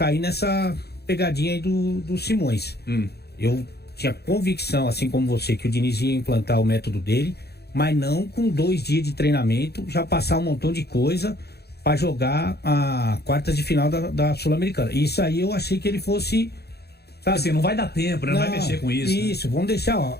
nessa pegadinha aí do Simões. Eu tinha convicção, assim como você, que o Diniz ia implantar o método dele, mas não com 2 dias de treinamento, já passar um montão de coisa para jogar a quartas de final da Sul-Americana. Isso aí eu achei que ele fosse... Sabe? Assim, não vai dar tempo, né? Não vai mexer com isso. Isso, vamos deixar,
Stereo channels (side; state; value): right; late; 0.47 ms